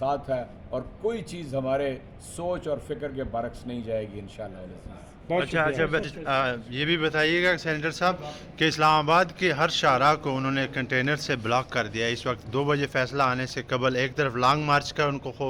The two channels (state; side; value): identical; both; correlation 1.00